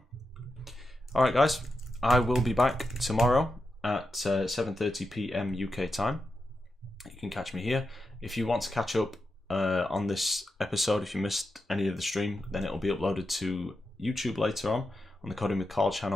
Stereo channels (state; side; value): normal; both; correlation 0.88